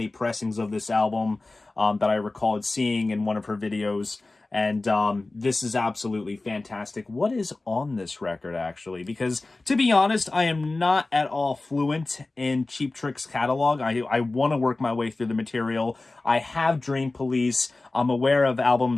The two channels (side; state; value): right; quieter; 3.2 dB